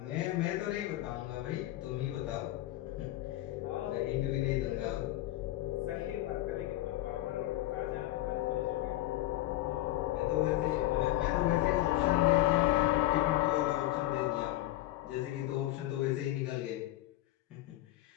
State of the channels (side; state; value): right; quieter; 16.1 dB